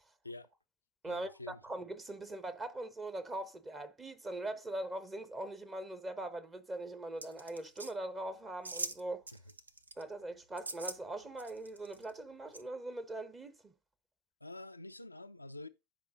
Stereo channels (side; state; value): both; normal; correlation 0.57